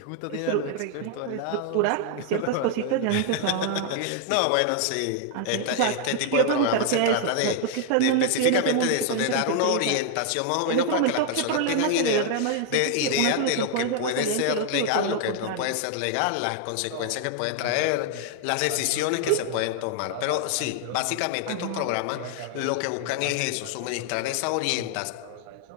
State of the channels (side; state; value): both; different; correlation 0.00